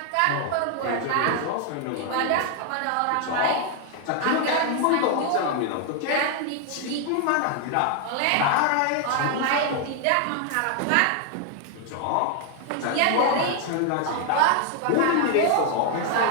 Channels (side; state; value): both; different; correlation 0.00